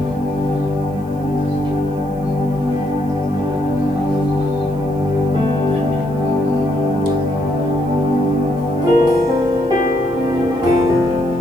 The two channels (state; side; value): noise; right; hiss, 29 dB below the sound